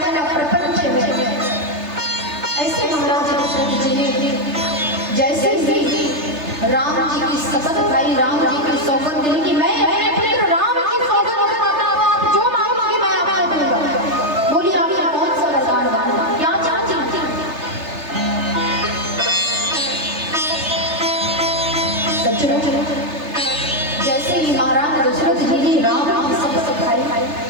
ना प्रपंच है, ऐसे महाराज दशरथ जी ने जैसे ही राम जी की शपथ खाई, राम जी की सौगंध ली कि मैं अपने पुत्र राम की सौगंध खाता हूं, आप जो मांगोगे मैं आपको दूंगा। बोली आपने कौन सा वरदान मांगा, क्या चाहती थी? जैसे ही महाराज दशरथ जी ने राम की शपथ खाई,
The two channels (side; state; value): left; late; 3.3 ms